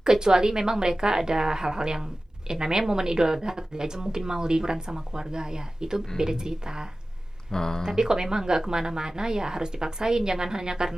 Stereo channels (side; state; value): both; normal; correlation 0.96